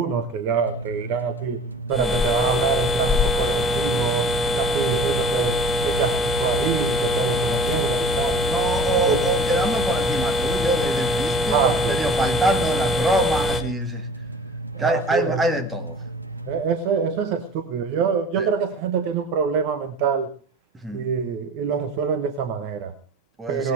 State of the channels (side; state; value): both; normal; correlation 0.43